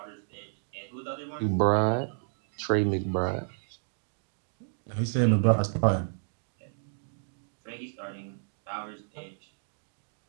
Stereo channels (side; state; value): left; silent; digital silence